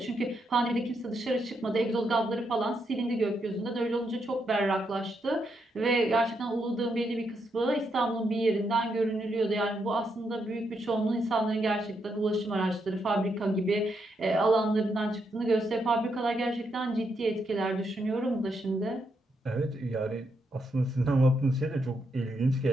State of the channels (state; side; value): normal; both; correlation 0.80